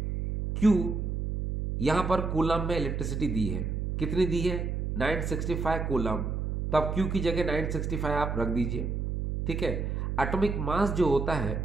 Q यहां पर कूलम में इलेक्ट्रिसिटी दी है, कितनी दी है, 965 कूलम, तो आप Q की जगह 965 आप रख दीजिए, ठीक है। एटॉमिक मास जो होता है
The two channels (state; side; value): noise; right; hum, 2 dB below the sound